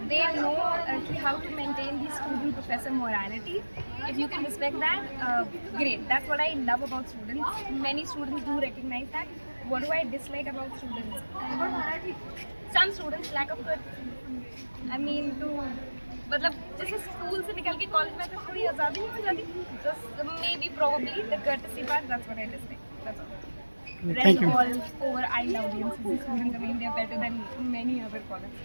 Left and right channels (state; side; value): inverted; both; correlation -1.00